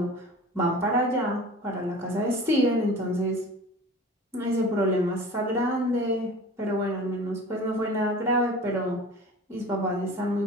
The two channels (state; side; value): normal; both; correlation 0.39